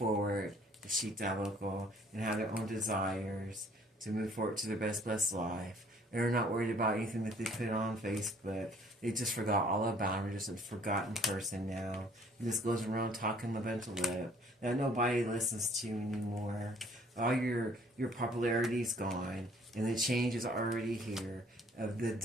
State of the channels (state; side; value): normal; both; correlation 0.58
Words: the Shita Local, and have their own desires. to move forward to their best blessed life. They're not worried about anything that they put on Facebook. They just forgot all about them. They're just a forgotten person now. He just goes around talking a bunch of lip that nobody listens to anymore. All your popularity's gone, and the change is already here. Of the